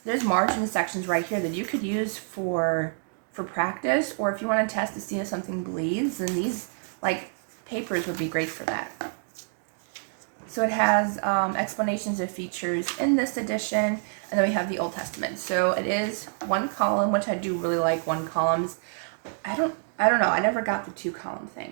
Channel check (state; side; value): silent; left; digital silence